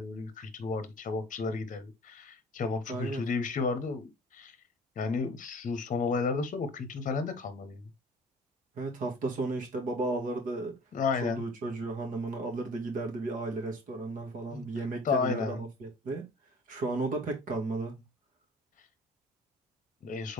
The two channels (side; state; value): both; normal; correlation 0.47